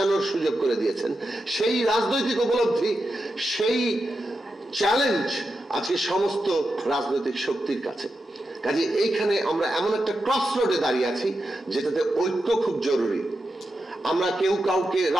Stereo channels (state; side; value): normal; both; correlation 0.88